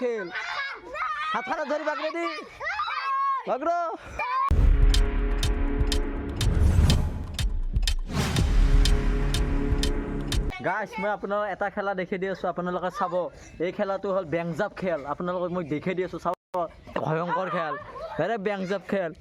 খেল হাতখানত ধৰি বাগৰে দি বাগৰ গাইছ মই আপোনালোকক এটা খেলা দেখি দি আছোঁ আপোনালোকে চাব এই খেলাটো হ'ল বেংজাপ খেল আপোনালোকক মই দেখি দি আছোঁ চাব ভয়ংকৰ খেল আৰে বেংজাপ খেল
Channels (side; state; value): both; identical; correlation 1.00